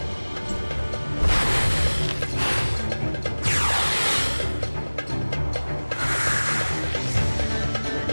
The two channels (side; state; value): both; inverted; correlation -1.00